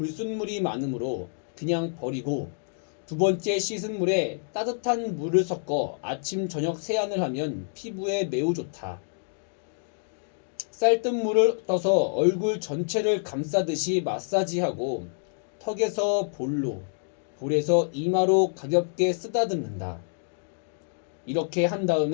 많으므로 그냥 버리고 두 번째 씻은 물에 따뜻한 물을 섞어 아침 저녁 세안을 하면 피부에 매우 좋다. 쌀뜨물을 떠서 얼굴 전체를 감싸듯이 마사지하고 턱에서 볼에서 이마로 가볍게 쓰다듬는다. 이렇게 한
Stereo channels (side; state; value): right; silent; digital silence